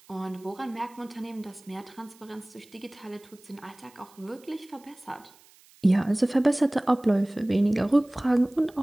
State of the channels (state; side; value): noise; right; hiss, 27 dB below the sound